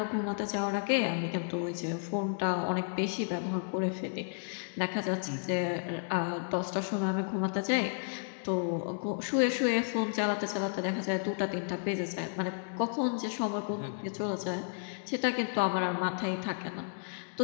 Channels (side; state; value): right; silent; digital silence